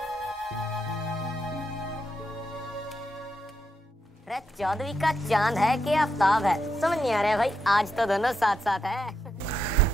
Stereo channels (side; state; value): both; normal; correlation 0.82